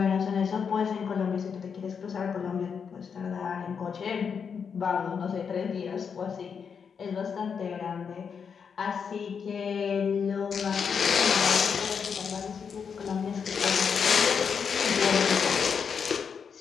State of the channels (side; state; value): right; quieter; 6.5 dB